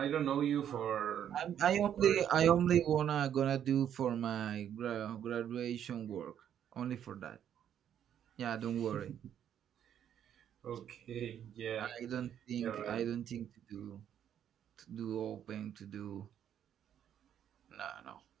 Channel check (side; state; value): left; quieter; 9.7 dB